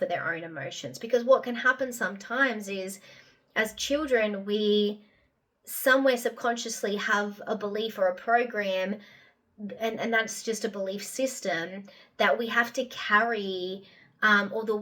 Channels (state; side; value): identical; both; correlation 1.00